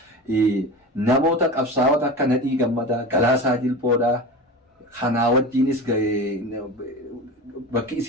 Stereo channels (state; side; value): normal; both; correlation 0.30